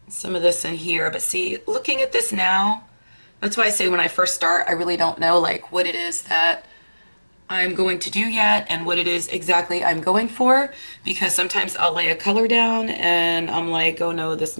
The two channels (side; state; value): both; inverted; correlation -1.00